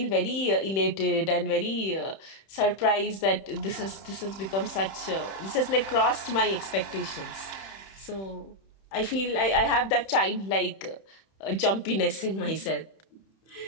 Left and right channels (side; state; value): right; late; 31 ms